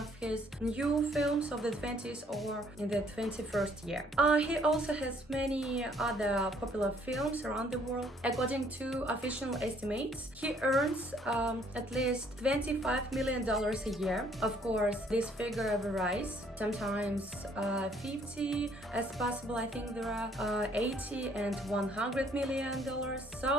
his new films of the 20s or in the 21st year. He also has many other popular films around the world. According to official estimates, he earns at least $25 million a year. Of course, this figure varies, sometimes 50 as possible. I think there are 80 and $100 million,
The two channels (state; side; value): normal; both; correlation 0.63